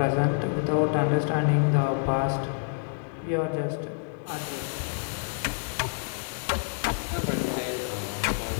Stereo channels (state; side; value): silent; right; digital silence